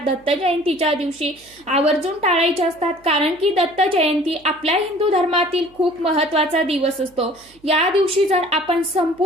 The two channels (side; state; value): right; noise; hum, 30 dB below the sound